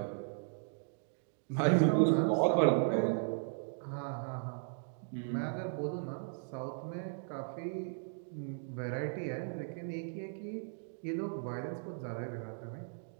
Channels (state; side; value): silent; left; digital silence